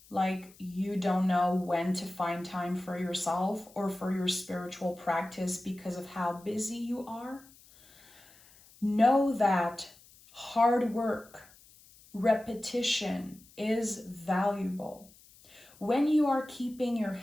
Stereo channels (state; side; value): noise; left; hiss, 25 dB below the sound